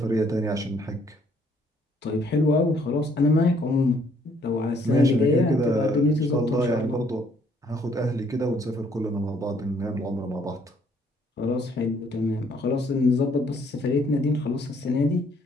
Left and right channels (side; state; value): both; normal; correlation 0.65